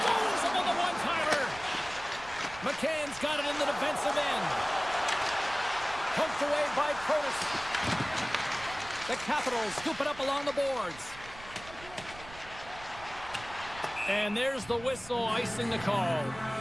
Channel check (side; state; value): right; noise; rumble, 17 dB below the sound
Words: him on the one-timer. McCann's got it in the defensive end. Poked away by Protas. The Capitals scoop it up along the boards. And there's the whistle icing the call.